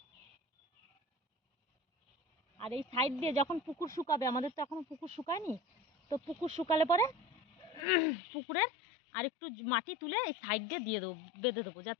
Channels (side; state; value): right; drops out; at 7.9 s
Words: আর এই সাইড দিয়ে যখন পুকুর শুকাবে, আমাদের তো এখনো পুকুর শুকায়নি, তো পুকুর শুকালে পরে পুকুরের আর একটু মাটি তুলে এই সাইড দিয়ে দেবো, বেঁধে দেবো,